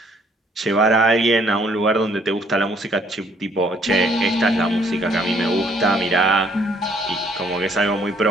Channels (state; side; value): normal; both; correlation 0.63